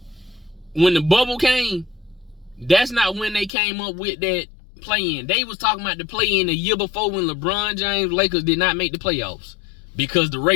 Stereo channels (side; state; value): right; drops out; at 3.5 s